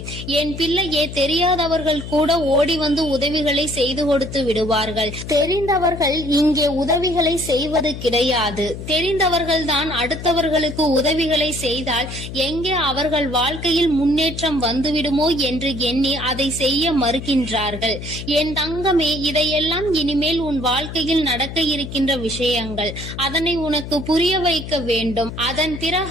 என் பிள்ளையே, தெரியாதவர்கள் கூட ஓடி வந்து உதவிகளை செய்து கொடுத்து விடுவார்கள். தெரிந்தவர்கள் இங்கே உதவிகளை செய்வது கிடையாது. தெரிந்தவர்கள் தான் அடுத்தவர்களுக்கு உதவிகளை செய்தால் எங்கே அவர்கள் வாழ்க்கையில் முன்னேற்றம் வந்துவிடுமோ என்று எண்ணி அதை செய்ய மறுக்கின்றார்கள். என் தங்கமே, இதையெல்லாம் இனிமேல் உன் வாழ்க்கையில் நடக்க இருக்கின்ற விஷயங்கள். அதனை உனக்கு புரிய வைக்க வேண்டும். அதன்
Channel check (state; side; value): noise; left; hum, 9 dB below the sound